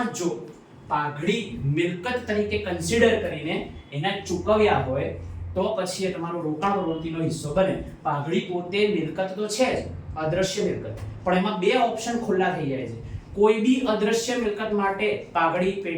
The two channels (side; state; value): both; identical; correlation 1.00